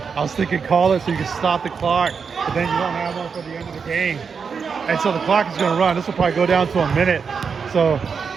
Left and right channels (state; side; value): quieter; left; 5.9 dB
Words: I was thinking call it so you can stop the clock, but then you don't have one for the end of the game. And so the clock is going to run. This will probably go down to a minute. So